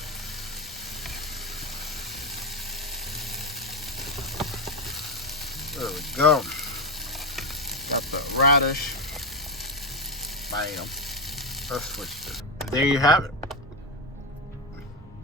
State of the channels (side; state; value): both; normal; correlation 0.11